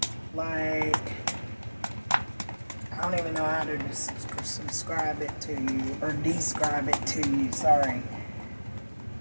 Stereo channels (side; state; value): both; inverted; correlation -1.00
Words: like, I don't even know how to subscribe it to you, or describe it to you, sorry.